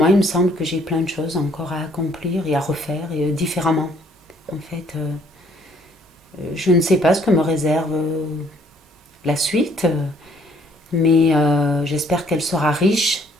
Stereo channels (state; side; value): normal; both; correlation 0.63